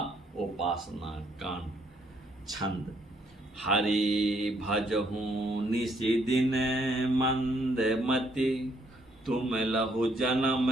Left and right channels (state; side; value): normal; both; correlation 0.69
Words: उपासना कांड। छंद। हरि भजहूँ निशि दिन मंद मति, तुम लहु